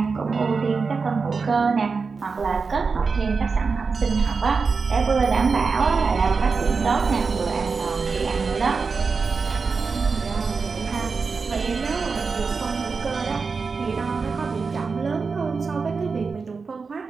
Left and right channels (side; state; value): left; quieter; 4.8 dB